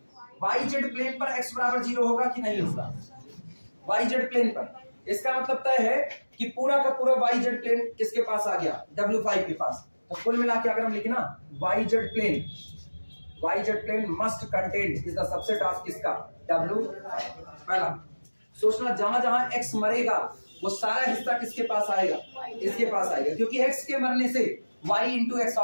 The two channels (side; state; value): both; inverted; correlation -1.00